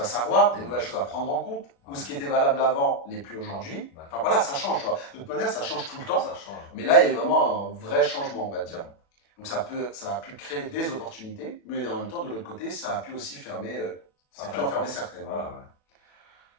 savoir, des nouvelles choses à prendre en compte, ou ce qui était valable avant n'est plus aujourd'hui. Enfin voilà, ça change, tu vois. De toute manière, ça change tout le temps, mais là, il y a eu vraiment un vrai changement, on va dire. Donc ça a pu créer des opportunités, mais en même temps, de l'autre côté, ça a pu aussi fermer, ça a pu en fermer certaines. Voilà.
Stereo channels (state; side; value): late; right; 36 ms